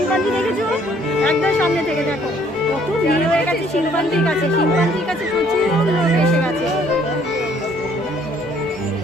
দেখেছো একদম সামনে থেকে দেখো কত ভিড় হয়ে গেছে শিম্পাঞ্জির কাছে প্রচুর লোক এসে গেছে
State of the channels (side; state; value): both; normal; correlation 0.62